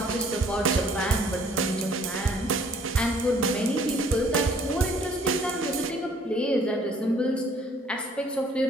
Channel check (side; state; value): both; normal; correlation 0.59